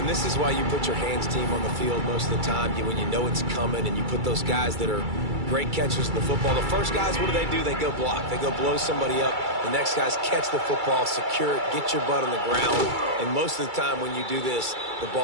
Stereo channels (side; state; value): left; late; 2.3 ms